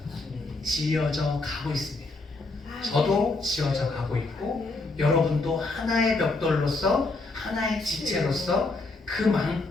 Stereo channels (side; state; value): right; quieter; 3.4 dB